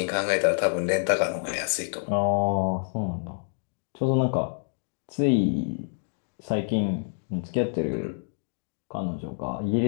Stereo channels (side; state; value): right; silent; digital silence